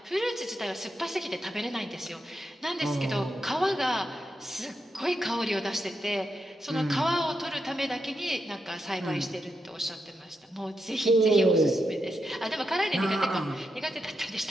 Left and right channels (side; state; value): both; normal; correlation 0.84